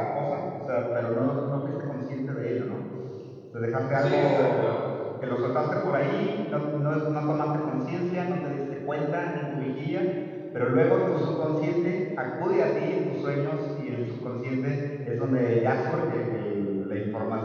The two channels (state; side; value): identical; both; correlation 1.00